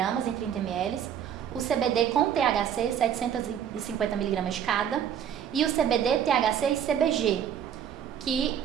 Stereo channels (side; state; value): left; quieter; 9.0 dB